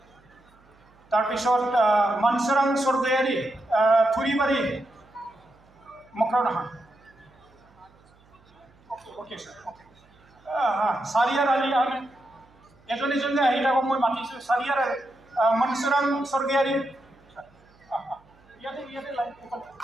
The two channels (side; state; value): right; noise; hum, 30 dB below the sound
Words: তাৰপিছত মনসুৰাং স্বৰ্গয়াৰী থুৰিবাৰী মকৰাও নহয় okay sir okay চাৰিয়াৰ Ali Ahmed এজন এজনকৈ আহি থাকক মই মাতিছোঁ চাৰিয়াৰ মনসুৰাং স্বৰ্গয়াৰী ইয়াতে লাইন